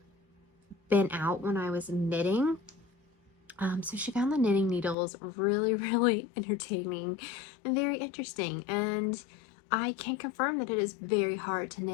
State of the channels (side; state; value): right; drops out; at 5.0 s